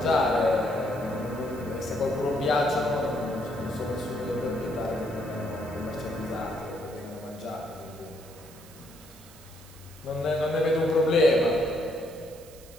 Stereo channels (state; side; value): noise; right; hiss, 21 dB below the sound